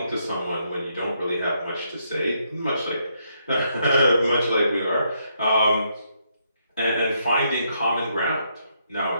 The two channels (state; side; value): inverted; both; correlation -0.76